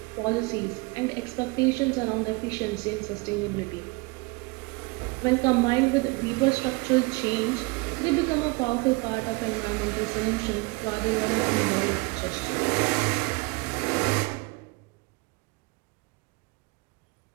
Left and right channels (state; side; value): quieter; left; 27.0 dB